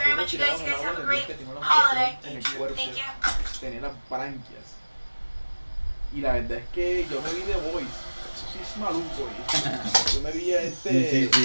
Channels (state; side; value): inverted; both; correlation -1.00